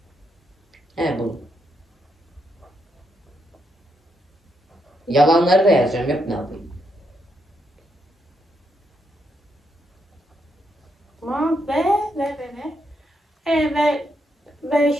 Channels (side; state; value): both; normal; correlation 0.79